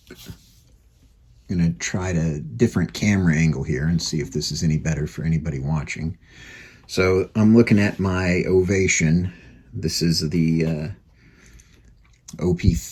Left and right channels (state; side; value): identical; both; correlation 1.00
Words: to try a different camera angle here and see if this is any better for anybody watching. So I'm looking at my Ovation. This is the